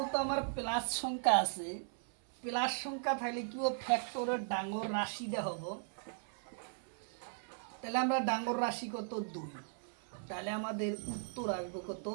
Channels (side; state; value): left; silent; 53 dB below the other